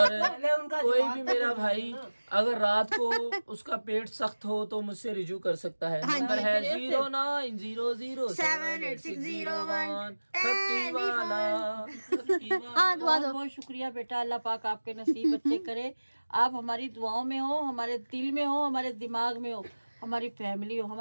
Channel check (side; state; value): both; inverted; correlation -1.00